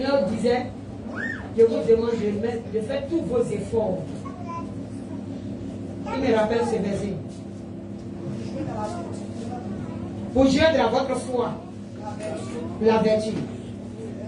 disait, je vous demande de faire tous vos efforts. Il me rappelle ce verset. Pour joindre à votre foi la vertu.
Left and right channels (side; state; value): both; identical; correlation 1.00